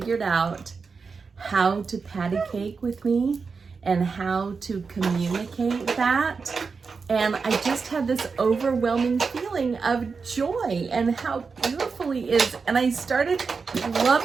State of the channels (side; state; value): left; quieter; 5.0 dB